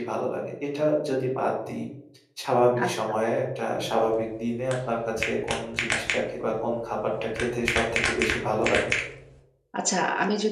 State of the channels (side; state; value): both; identical; correlation 1.00